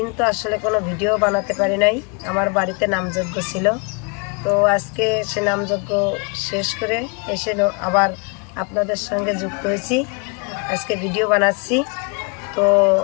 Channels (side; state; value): right; quieter; 34.5 dB